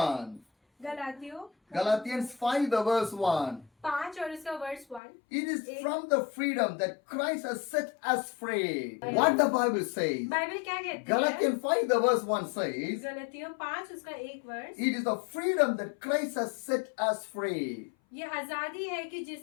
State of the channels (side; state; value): right; drops out; at 5.0 s